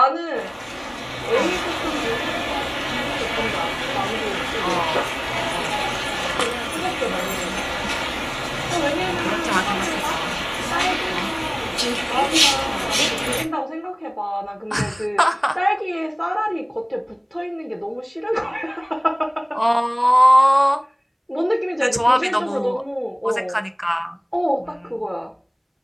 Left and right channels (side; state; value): both; identical; correlation 1.00